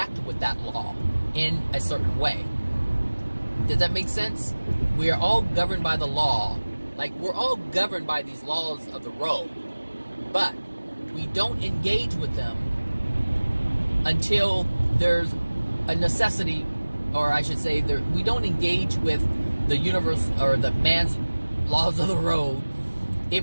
with that law in a certain way. Does that make sense? We are all governed by the law. Like, we're all governed by these laws of the road. But we don't engage with them until there's a necessity, or I should say, we don't engage with the universe or the man's laws of the road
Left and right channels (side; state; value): both; inverted; correlation -1.00